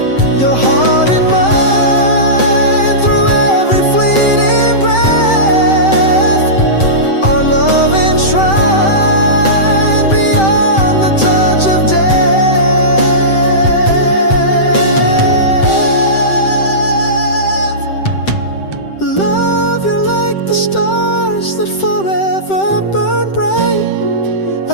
Your heart and mine through every fleeting breath, our love enshrined beyond the touch of death. Love you like the stars that forever burn bright,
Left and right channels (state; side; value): late; right; 7.7 ms